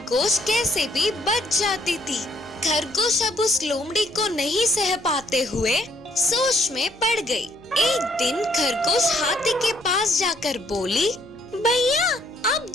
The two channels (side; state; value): left; noise; hum, 28 dB below the sound